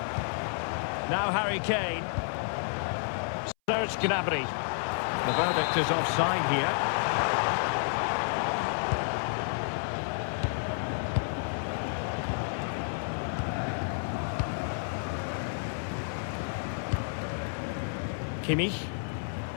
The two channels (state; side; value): silent; right; 57 dB below the other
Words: Now Harry Kane. Serge Gnabry. The verdict is offside here. Kimmich.